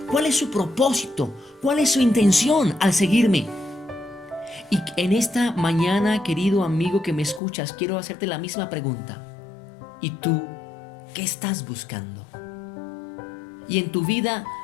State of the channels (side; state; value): right; drops out; at 7.4 s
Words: ¿Cuál es su propósito? ¿Cuál es su intención al seguirme? Y en esta mañana, querido amigo que me escuchas, quiero hacerte la misma pregunta. ¿Y tú qué estás buscando? Y en tu vida,